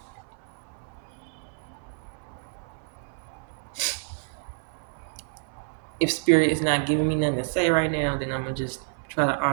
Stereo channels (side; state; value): left; silent; 59 dB below the other